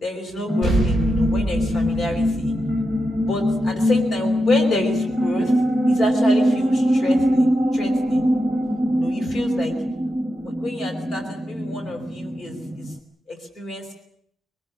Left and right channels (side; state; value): both; normal; correlation 0.88